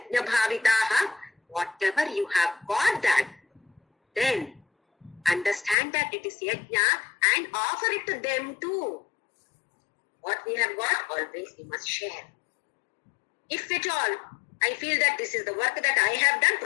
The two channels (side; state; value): right; drops out; at 5.8 s